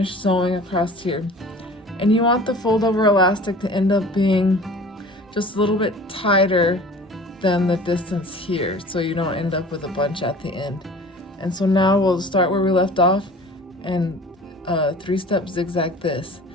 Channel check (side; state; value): both; normal; correlation 0.44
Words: sewing across here. And you want the fold over elastic to end up being just a little bit tighter than the distance here, so you don't end up with a bunch at the end. And so now we'll start where we left off and 3-step zigzag this,